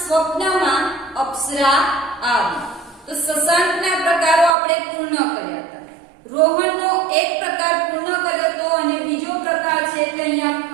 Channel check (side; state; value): left; drops out; at 4.5 s